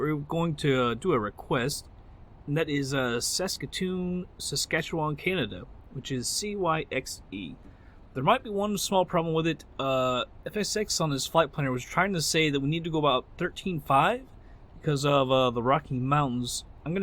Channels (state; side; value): identical; both; correlation 1.00